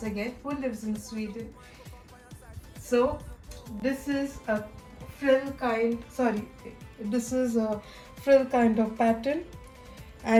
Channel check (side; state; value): both; identical; correlation 1.00